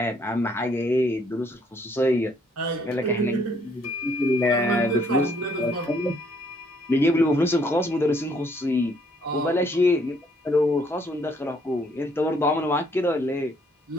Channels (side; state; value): both; normal; correlation 0.66